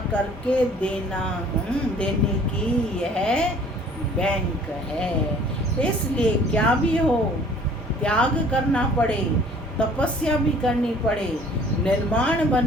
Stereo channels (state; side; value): normal; both; correlation 0.53